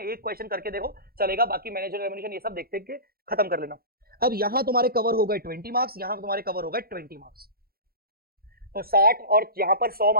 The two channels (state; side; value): late; left; 0.44 ms